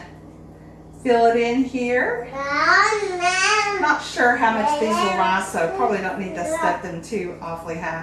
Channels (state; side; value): identical; both; correlation 1.00